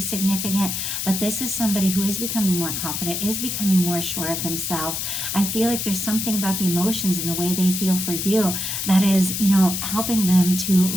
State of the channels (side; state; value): left; noise; hiss, 3 dB below the sound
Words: but this is somebody who is becoming more confident, is becoming more sure of themselves. I feel like there's something about the emotions and the way they feel for you that is, helping them to